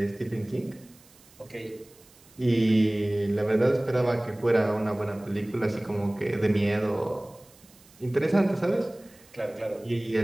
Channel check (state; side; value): noise; right; hiss, 26 dB below the sound